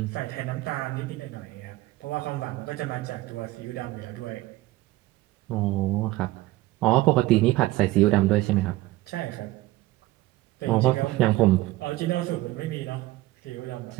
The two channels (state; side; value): quieter; left; 18.1 dB